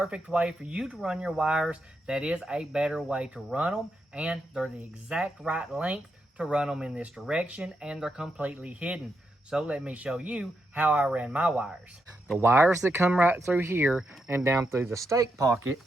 way for you to run your wires that is a better way to run them, and they're the exact right length to run them in this direction, and they're completely hidden. So let me show you how I ran my wires. The wires that come right through here and down through the stake pocket,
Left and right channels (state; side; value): normal; both; correlation 0.83